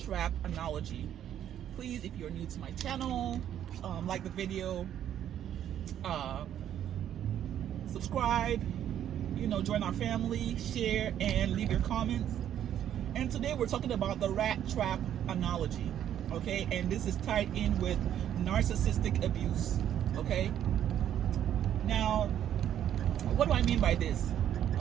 analogy. Please, if you're new to my channel, like the video, subscribe, join our family, share, and leave your comments. And today we're talking about the rat trap analogy, okay? And this is tied in with narcissistic abuse, okay? Now, what do I mean by this?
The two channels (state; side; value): quieter; left; 10.5 dB